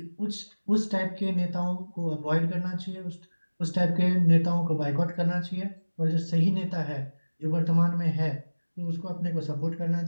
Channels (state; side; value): inverted; both; correlation -1.00